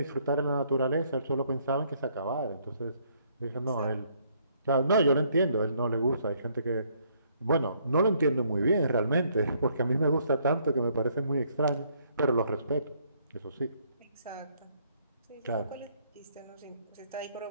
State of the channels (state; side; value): inverted; both; correlation -0.68